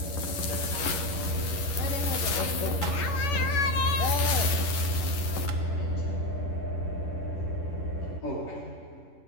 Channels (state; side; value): late; right; 11 ms